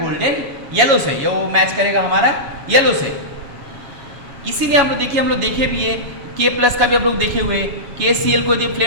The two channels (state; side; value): late; left; 7.1 ms